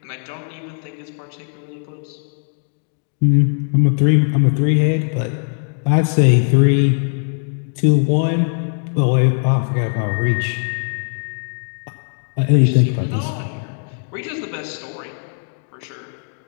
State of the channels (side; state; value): right; silent; digital silence